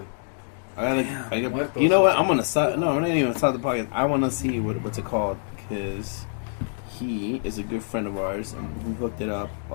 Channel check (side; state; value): right; silent; digital silence